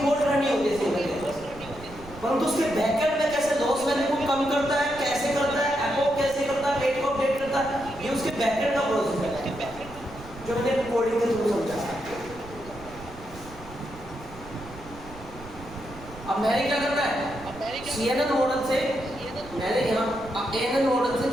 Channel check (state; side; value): noise; right; rumble, 18 dB below the sound